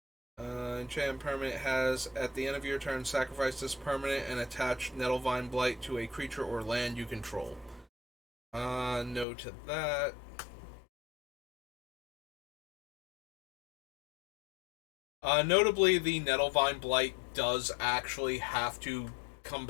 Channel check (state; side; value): drops out; right; at 9.2 s